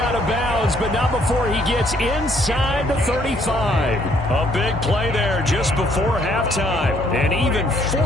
of bounds, but not before he gets inside the 35. A big play there just before halftime. And even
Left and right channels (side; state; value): both; normal; correlation 0.66